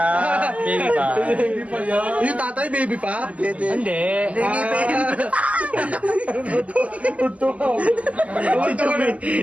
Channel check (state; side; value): late; left; 0.069 ms